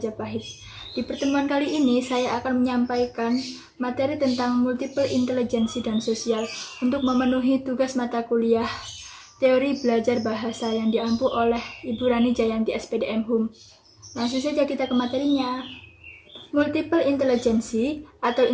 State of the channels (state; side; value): identical; both; correlation 1.00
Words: Di pertemuan kali ini saya akan menyampaikan materi tentang multiple intelijensi dan sosial untuk memenuhi tugas mata kuliah Teori Belajar Bahasa yang diampu oleh Ibu Rani Jayanti SPDM HUM. Langsung saja kita ke materinya. Multiple intelijensi atau